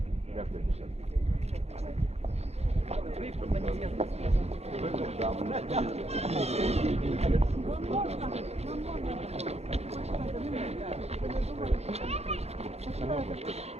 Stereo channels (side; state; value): left; late; 0.31 ms